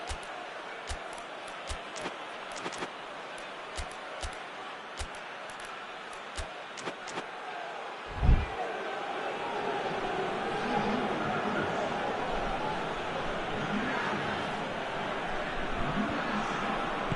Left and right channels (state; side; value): identical; both; correlation 1.00